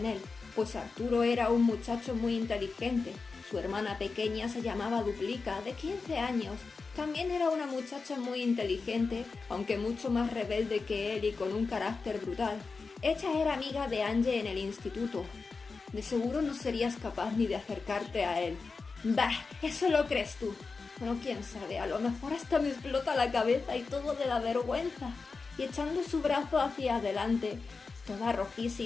él, pues Arturo era un muchacho muy inteligente. Su hermana pequeña se llamaba Duplica, de 15 años. También era una muchacha muy inteligente, aunque mucho más rebelde que él y con un carácter brutal. Ella era amiga de Angie en el instituto. De seguro no serías capaz ni de acercarte a él. Bah, eso lo crees tú. Bueno, quién sabe, a lo mejor hasta me explota la cabeza y todo de la vergüenza. Y echando su brazo hacia adelante, toda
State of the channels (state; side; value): quieter; right; 4.4 dB